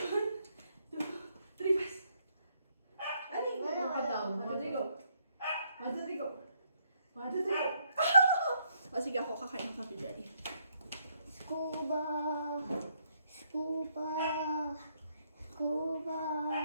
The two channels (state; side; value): inverted; both; correlation -0.72